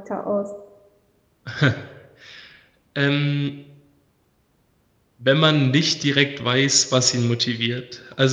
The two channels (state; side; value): identical; both; correlation 1.00